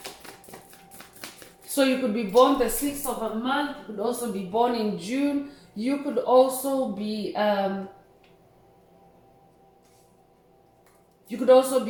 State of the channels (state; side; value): identical; both; correlation 1.00